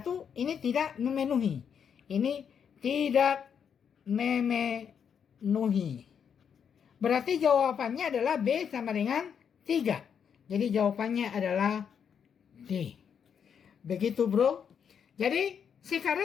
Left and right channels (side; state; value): right; quieter; 7.5 dB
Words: ini tidak memenuhi. Ini tidak memenuhi. Berarti jawabannya adalah B sama dengan 3. Jadi jawabannya adalah D. Begitu bro. Jadi